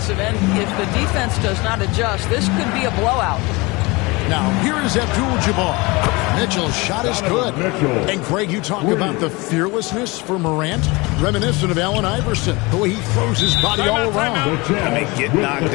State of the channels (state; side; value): quieter; right; 24.8 dB